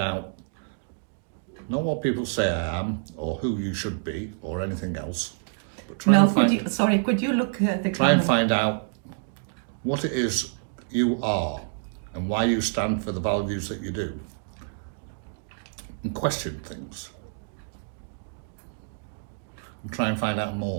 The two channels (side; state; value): left; silent; digital silence